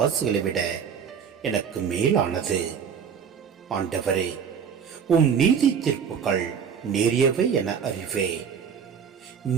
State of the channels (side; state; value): left; quieter; 7.2 dB